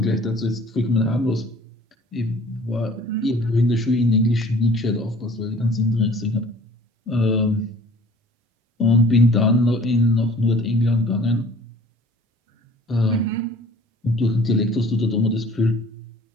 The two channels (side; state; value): both; normal; correlation 0.51